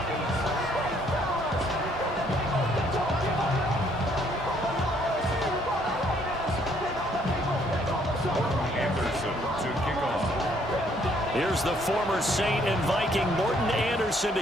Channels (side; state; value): both; normal; correlation 0.66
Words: Here's the former Saint and Viking Morton Anderson to